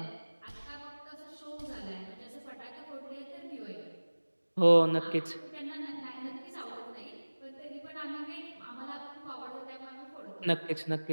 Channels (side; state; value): both; inverted; correlation -1.00